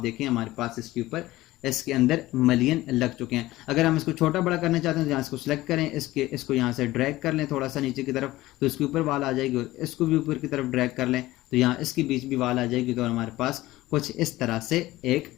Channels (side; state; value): right; quieter; 17.4 dB